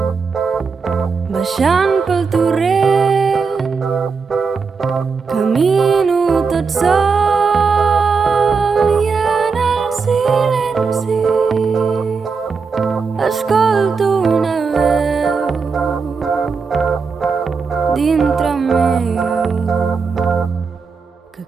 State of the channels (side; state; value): left; quieter; 5.1 dB